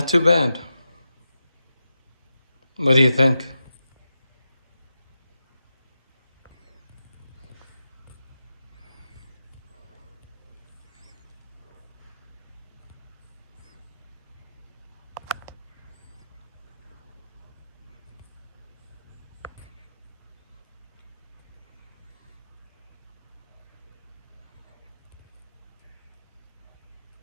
too bad. What do you think?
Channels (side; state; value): both; inverted; correlation -0.90